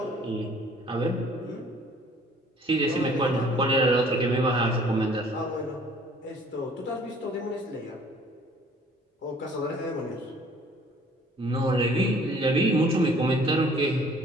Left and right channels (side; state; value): both; normal; correlation 0.55